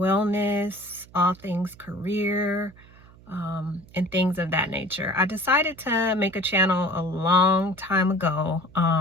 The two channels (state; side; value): noise; right; hum, 24 dB below the sound